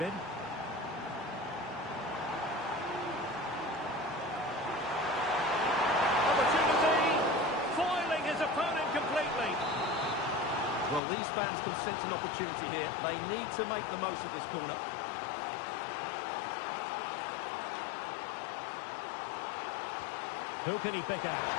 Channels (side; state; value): right; drops out; at 11.0 s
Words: Opportunity, foiling his opponent completely. Well, these fans can sense an opportunity here. They need to make the most of this corner. Who can he pick out?